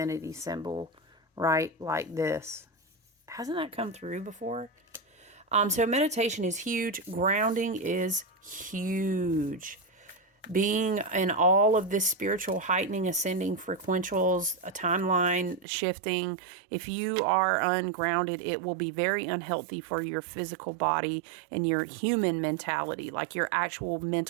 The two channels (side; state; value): left; drops out; at 15.7 s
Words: symbol, right? Like this. Hasn't that come through before? So meditation is huge. Grounding is huge. Being in all of this spiritual heightening, ascending frequentials, a timeline shifting. If you are ungrounded, it will be very unhealthy for your physical body and your human mentality, like your actual